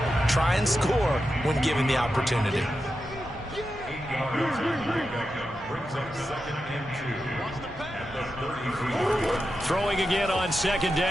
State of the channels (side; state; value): both; normal; correlation 0.89